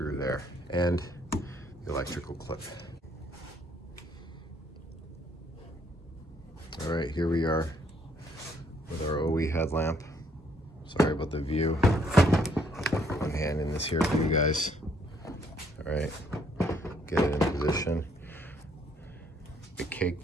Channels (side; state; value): both; normal; correlation 0.67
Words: there, and the electrical clip. All right, here we are with our OE headlamp. Sorry about the view. One hand in this here for you guys. All right, get it in position. I